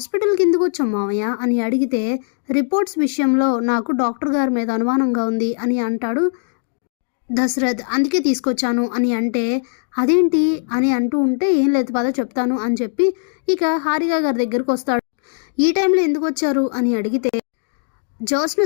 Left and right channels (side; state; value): right; silent; digital silence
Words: ఎందుకు వచ్చాం మావయ్య అని అడిగితే రిపోర్ట్స్ విషయంలో నాకు డాక్టర్ గారి మీద అనుమానంగా ఉంది అని అంటాడు దశరథ్. అందుకే తీసుకొచ్చాను అని అంటే అదేంటి అని అంటూ ఉంటే ఏం లేదు పద చెప్తాను అని చెప్పి ఇక హారిక గారి దగ్గరకు వస్తాడు. ఈ టైంలో ఎందుకు వచ్చారు అని అడిగితే జ్యోత్స్న